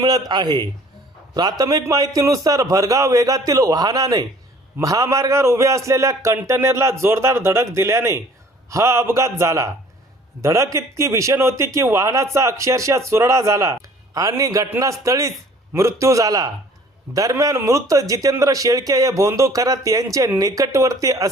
आहे। प्राथमिक माहितीनुसार भरधाव वेगातील वाहनाने महामार्गावर उभे असलेल्या कंटेनरला जोरदार धडक दिल्याने हा अपघात झाला। धडक इतकी भीषण होती की वाहनाचा अक्षरशः चुरडा झाला आणि घटनास्थळीच मृत्यू झाला। दरम्यान मृत जितेंद्र शेळके हे भोंदू खरात यांचे निकटवर्ती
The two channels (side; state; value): both; normal; correlation 0.53